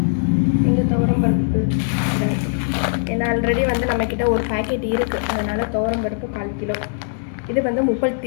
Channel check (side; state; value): right; silent; 65 dB below the other